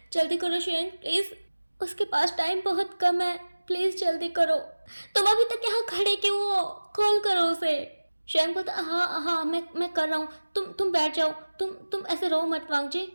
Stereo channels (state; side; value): inverted; both; correlation -1.00